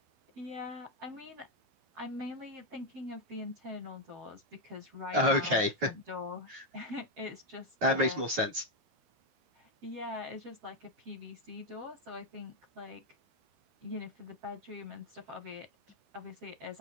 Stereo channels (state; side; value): late; left; 12 ms